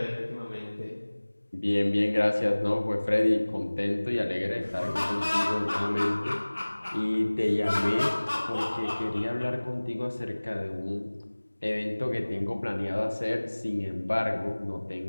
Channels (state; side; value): inverted; both; correlation -1.00